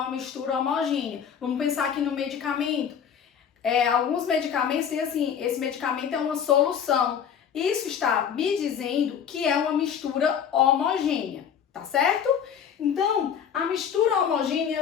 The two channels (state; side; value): quieter; right; 8.0 dB